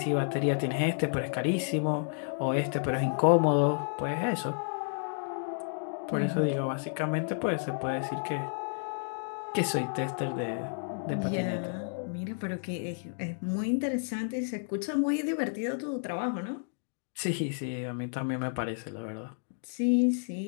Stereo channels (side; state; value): right; silent; digital silence